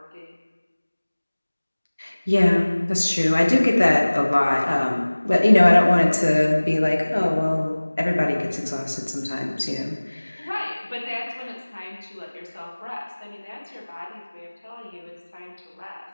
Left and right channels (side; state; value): both; inverted; correlation -1.00